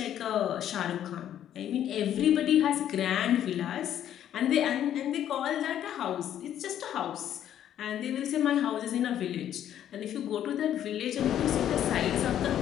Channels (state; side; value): quieter; right; 10.7 dB